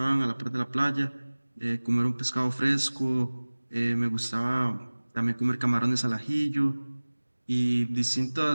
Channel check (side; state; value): both; inverted; correlation -1.00